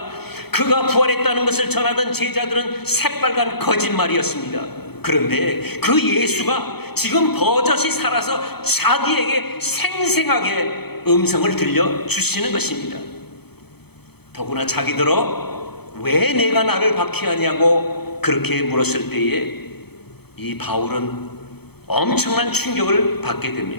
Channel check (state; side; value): late; right; 0.97 ms